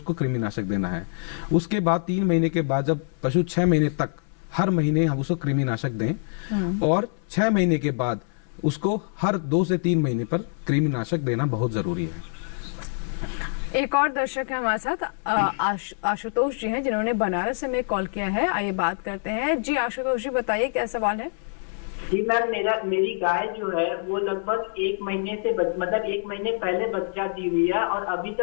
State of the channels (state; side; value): silent; right; 62 dB below the other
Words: कृमिनाशक देना है। उसके बाद 3 महीने के बाद जब पशु 6 महीने तक हर महीने हम उसको कृमिनाशक दें, और 6 महीने के बाद उसको हर 2 से 3 महीने पर कृमिनाशक देना बहुत जरूरी है। एक और दर्शक है हमारे साथ, आशुतोष जी हैं, जिन्होंने बनारस से हमें कॉल किया है। आइए बात करते हैं। जी आशुतोष जी, बताइए क्या सवाल है? जी मैम, मेरी गाय जो है वो लगभग 1 महीने से मतलब 1 महीने पहले बच्चा दी हुई है, और अभी